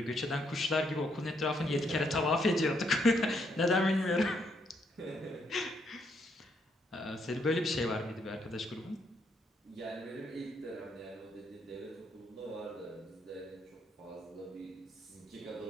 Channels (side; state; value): both; normal; correlation 0.75